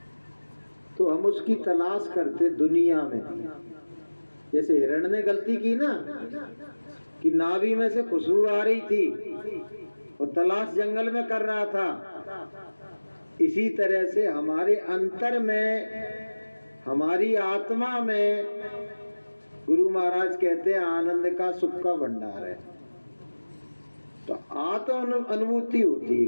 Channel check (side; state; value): both; inverted; correlation -1.00